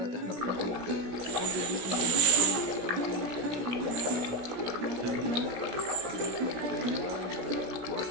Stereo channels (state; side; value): late; left; 17 ms